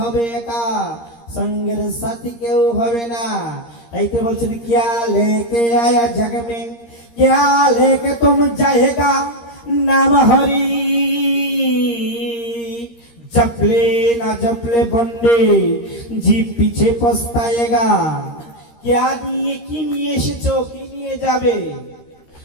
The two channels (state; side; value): late; right; 13 ms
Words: একা, সঙ্গের সাথী কেউ হবে না। তাই তো বলছেন কিয়া লেকে আয়া জগ মে, কিয়া লেকে তুম যায়েগা, নাম হরি জপলে না জপলে বন্ডে জি পিছে পস্তায়েগা। क्या নিয়ে কি নিয়ে এসেছো, কি নিয়ে যাবে?